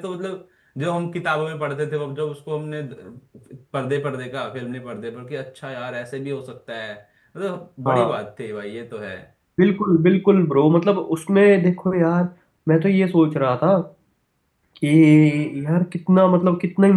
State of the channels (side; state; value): both; identical; correlation 1.00